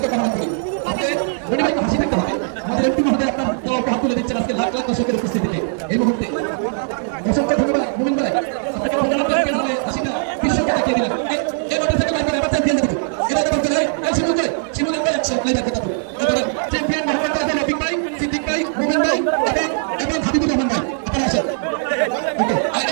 কামনা করি। আপনি মনিভাইকে হাসি দেখতে হবে, আমাদের একটু মহোদয় আপনার দলকে হাত তুলে দিচ্ছেন আজকে লাখ লাখ দর্শকের উপস্থিতিতে এই মুহূর্তে। অসংখ্য ধন্যবাদ মুমিন ভাই, আপনাকে হাসিটা বিশ্বকে দেখিয়ে দিলেন। এই মোটরসাইকেল বাইক এবার চ্যাম্পিয়ন দেখুন, এটা তো বলতে হয় এই শিমুলের ভাই আছে আপনার কথা তো এবার চ্যাম্পিয়ন মোহাম্মদ আজম রফিক ভাই, সিদ্দিক ভাই, মুমিন ভাই এবং হাবিবুর রহমান ভাই আপনারা আসেন। ওকে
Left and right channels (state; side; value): silent; left; digital silence